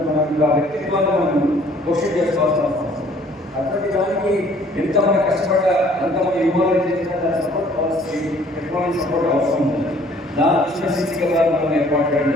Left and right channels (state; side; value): normal; both; correlation 0.57